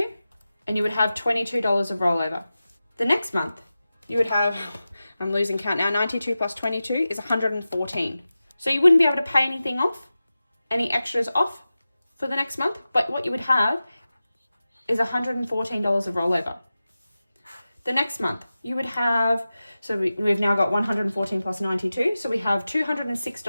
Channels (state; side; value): inverted; both; correlation -0.95